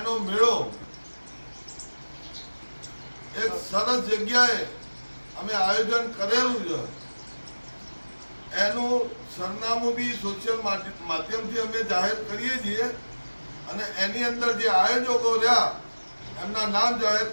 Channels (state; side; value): inverted; both; correlation -1.00